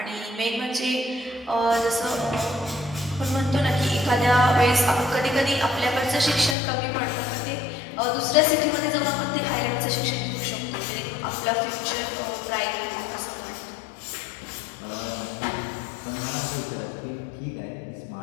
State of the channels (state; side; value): drops out; right; at 6.6 s